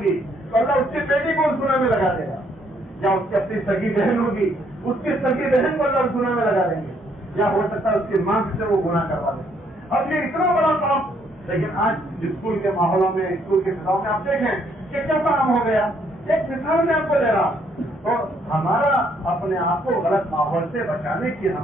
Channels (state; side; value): normal; both; correlation 0.69